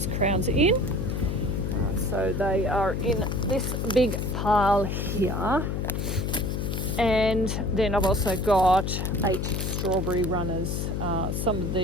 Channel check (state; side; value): noise; left; hum, 1 dB below the sound